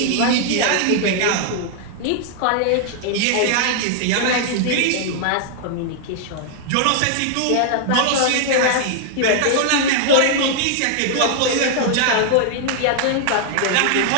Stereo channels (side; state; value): both; different; correlation -0.01